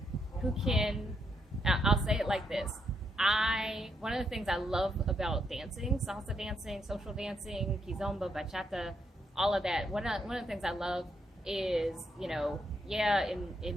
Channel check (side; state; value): both; normal; correlation 0.78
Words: I'll say it like this. One of the things I love about dancing, salsa dancing, social dancing, kizomba, bachata, all of that. One of the things I love is,